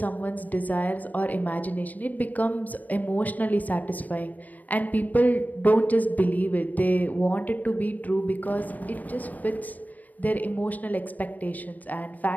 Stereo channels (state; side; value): late; right; 0.080 ms